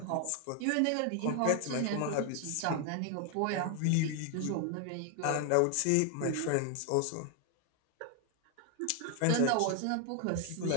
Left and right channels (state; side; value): different; both; correlation 0.00